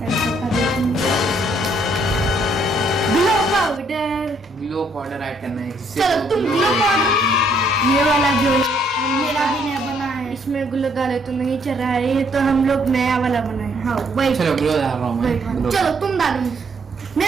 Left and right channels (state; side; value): normal; both; correlation 0.68